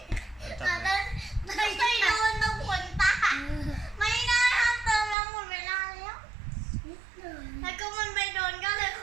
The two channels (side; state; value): left; drops out; at 5.2 s